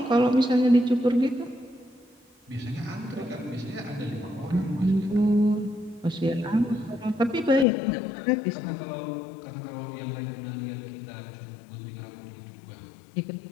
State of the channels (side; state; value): right; drops out; at 7.7 s